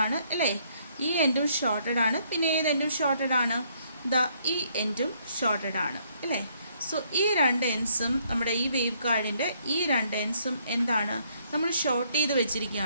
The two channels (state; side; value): inverted; both; correlation -0.68